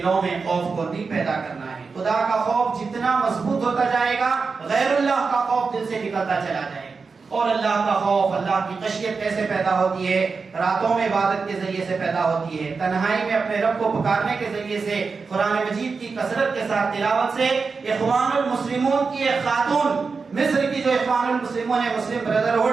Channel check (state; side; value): quieter; left; 4.8 dB